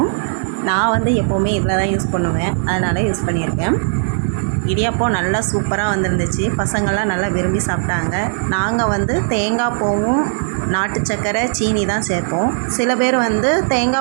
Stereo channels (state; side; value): silent; left; digital silence